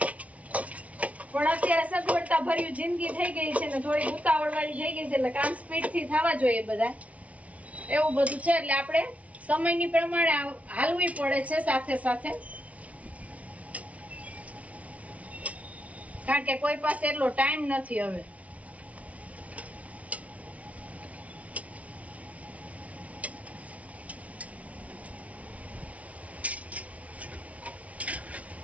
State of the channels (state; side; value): late; left; 0.066 ms